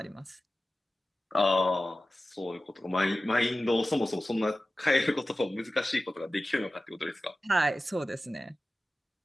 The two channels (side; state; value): both; normal; correlation 0.95